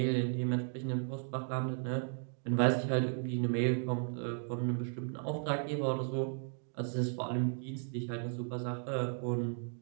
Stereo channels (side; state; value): left; silent; 54 dB below the other